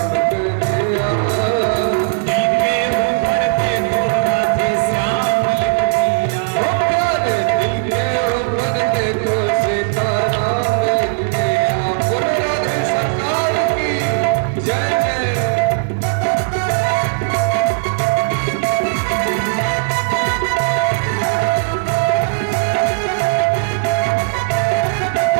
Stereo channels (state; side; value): silent; left; 66 dB below the other